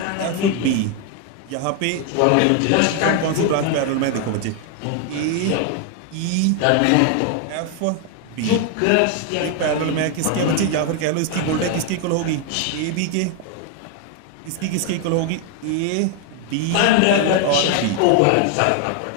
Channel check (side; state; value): both; different; correlation 0.01